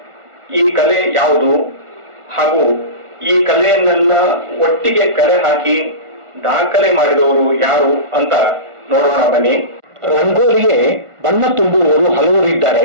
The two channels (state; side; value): late; left; 1.4 ms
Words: ಈ ಕಲೆ ಯಾವುದು ಹಾಗೂ ಈ ಕಲೆಯನ್ನೆಲ್ಲ ಒಟ್ಟಿಗೆ ಕಲೆ ಹಾಕಿ ದಾಖಲೆ ಮಾಡಿದವರು ಯಾರು ಅಂತ ನೋಡೋಣ ಬನ್ನಿ. ರಂಗೋಲಿಗೆ ಬಣ್ಣ ತುಂಬುವವರು ಹಲವರು ಇದ್ದಾರೆ,